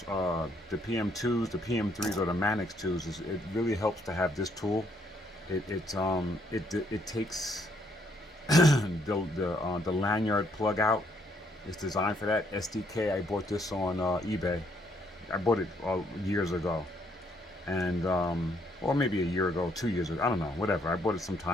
the PM2s, the PM3s, or the Manix 2s, it really helps to have this tool. It takes the lanyard plug out. It's designed for that. SDK. I bought this on eBay. I bought it years ago, and or maybe a year ago, 2 years ago. I don't know. Whatever. I bought it some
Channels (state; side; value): normal; both; correlation 0.70